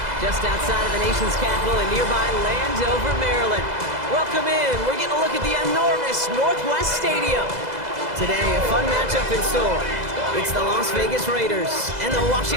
just outside of the nation's capital in nearby Landover, Maryland. Welcome in. We're getting a look at the enormous Northwest Stadium. Today, a fun matchup in store. It's the Las Vegas Raiders and the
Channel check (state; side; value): late; left; 2.0 ms